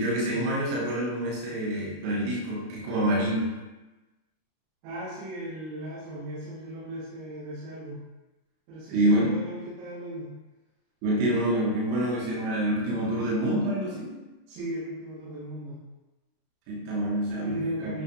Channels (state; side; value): late; left; 32 ms